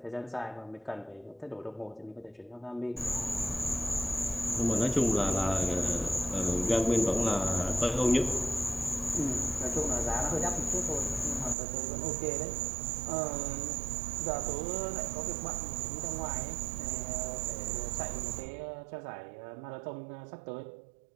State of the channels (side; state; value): left; drops out; at 11.6 s